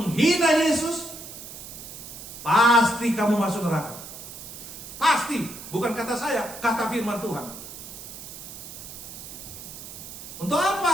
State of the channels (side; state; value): right; noise; hiss, 12 dB below the sound